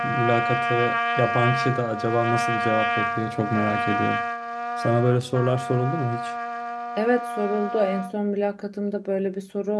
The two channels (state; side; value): identical; both; correlation 1.00